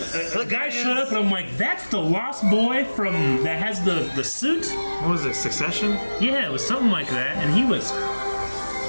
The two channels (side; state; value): both; inverted; correlation -1.00